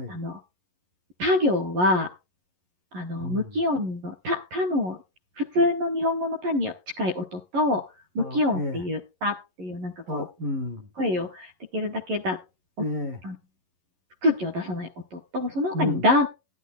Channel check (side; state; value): left; late; 11 ms